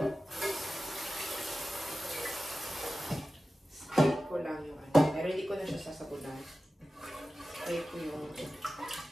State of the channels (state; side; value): normal; both; correlation 0.95